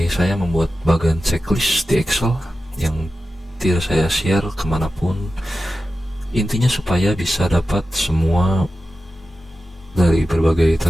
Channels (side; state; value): both; normal; correlation 0.93